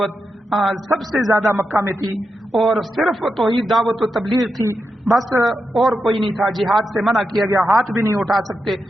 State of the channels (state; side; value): normal; both; correlation 0.87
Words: سب سے زیادہ مکہ میں تھی، اور صرف توحید دعوت و تبلیغ تھی بس، اور کوئی نہیں تھا۔ جہاد سے منع کیا گیا، ہاتھ بھی نہیں اٹھا سکتے،